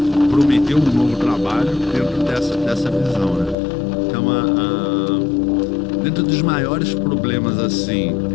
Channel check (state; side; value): drops out; right; at 3.6 s